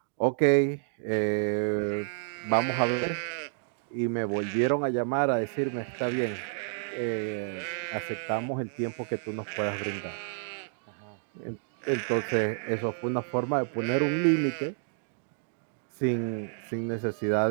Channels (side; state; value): left; silent; digital silence